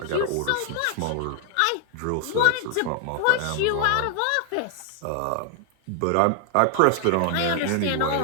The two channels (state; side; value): different; both; correlation 0.00